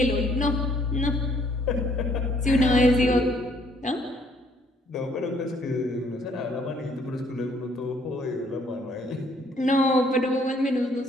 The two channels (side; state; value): both; normal; correlation 0.64